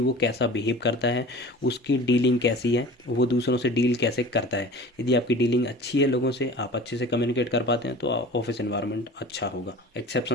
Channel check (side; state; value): both; normal; correlation 0.40